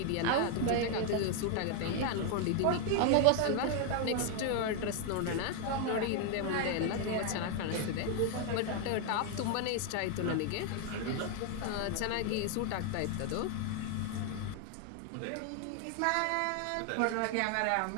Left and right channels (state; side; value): different; both; correlation 0.01